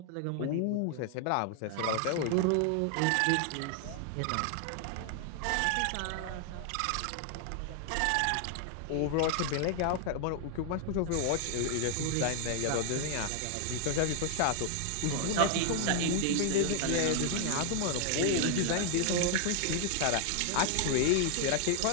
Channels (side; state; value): both; different; correlation 0.00